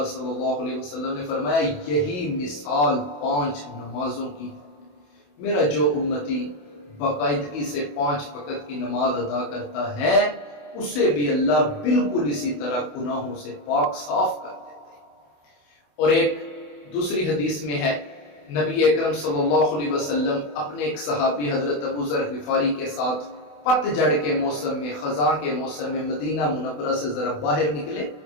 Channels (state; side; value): late; right; 28 ms